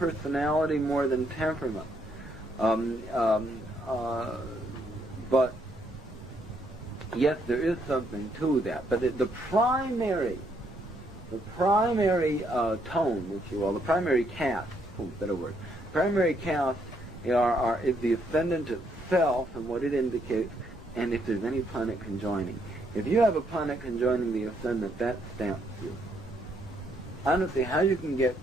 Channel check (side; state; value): both; normal; correlation 0.72